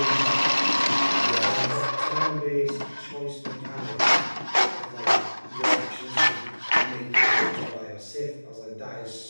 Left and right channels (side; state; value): both; inverted; correlation -1.00